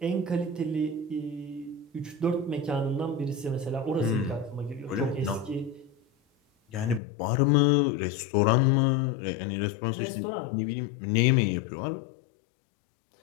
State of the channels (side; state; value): right; drops out; at 7.0 s